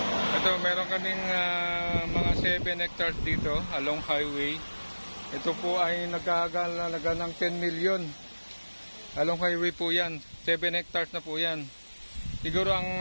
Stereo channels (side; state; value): both; inverted; correlation -1.00